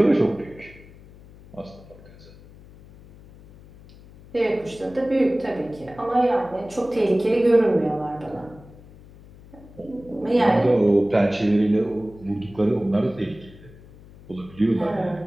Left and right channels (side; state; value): left; noise; hum, 21 dB below the sound